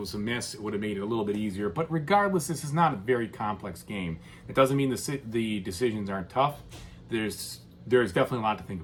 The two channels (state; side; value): identical; both; correlation 1.00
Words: a miss. It would have made it a little bit easier. But regardless, this is not a very complex game. It doesn't mean the decisions aren't tough. There's definitely a lot to think